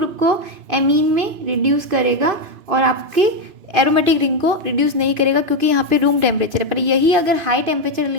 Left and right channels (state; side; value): late; left; 2.9 ms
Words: को एमीन में रिड्यूस करेगा और आपके एरोमेटिक रिंग को रिड्यूस नहीं करेगा, क्योंकि यहाँ पे रूम टेम्परेचर है। पर यही अगर हाई टेम्परेचर